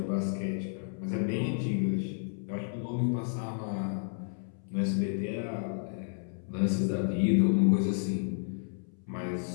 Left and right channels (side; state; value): right; silent; 57 dB below the other